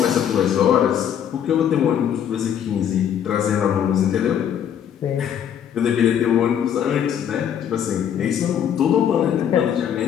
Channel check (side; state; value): right; quieter; 9.1 dB